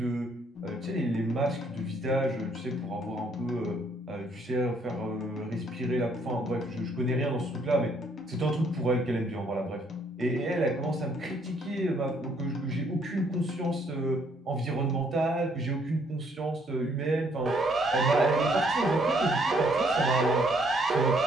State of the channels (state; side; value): normal; both; correlation 0.67